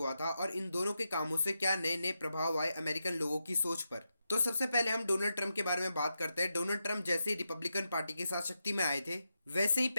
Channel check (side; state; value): both; inverted; correlation -0.87